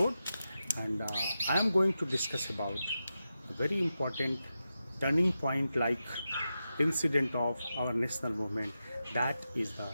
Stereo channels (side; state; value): both; inverted; correlation -0.90